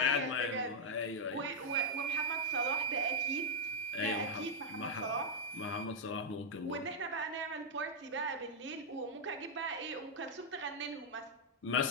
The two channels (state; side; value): normal; both; correlation -0.03